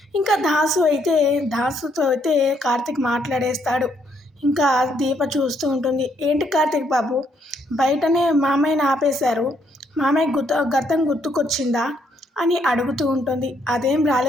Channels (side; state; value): both; normal; correlation 0.72